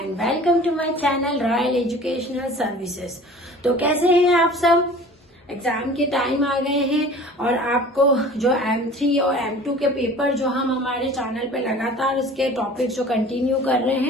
welcome to my channel Royal Educational Services। तो कैसे हैं आप सब? एग्जाम के टाइम आ गए हैं और आपको जो M3 और M2 के पेपर जो हम हमारे चैनल पे लगातार उसके टॉपिक्स जो कंटिन्यू कर रहे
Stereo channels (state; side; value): normal; both; correlation 0.44